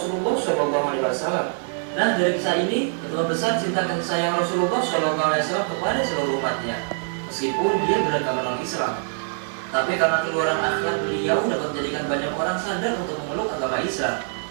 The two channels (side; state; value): left; silent; 63 dB below the other